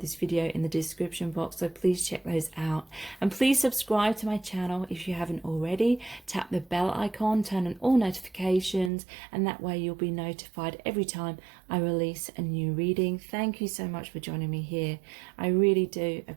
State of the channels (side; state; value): left; drops out; at 8.9 s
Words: video in the description box, so please check those out. And please subscribe to my channel if you haven't already. Tap the bell icon, turn on all notifications, and that way you'll be notified every time I release a new reading. Thank you so much for joining me here. I really do